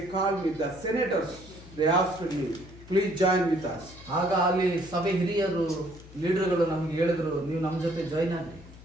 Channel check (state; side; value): noise; left; hum, 19 dB below the sound